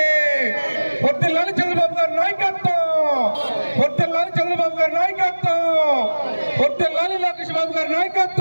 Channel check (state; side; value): inverted; both; correlation -1.00